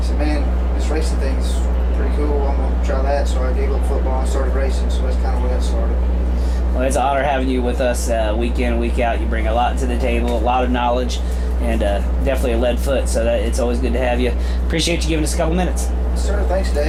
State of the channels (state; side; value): identical; both; correlation 1.00